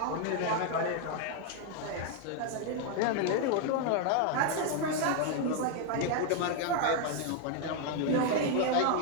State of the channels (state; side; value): different; both; correlation 0.00